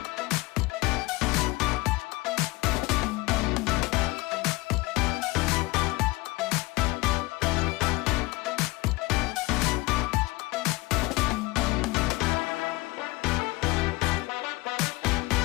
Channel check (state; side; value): quieter; right; 22.0 dB